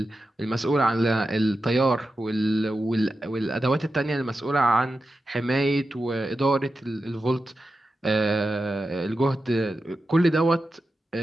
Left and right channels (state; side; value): normal; both; correlation 0.91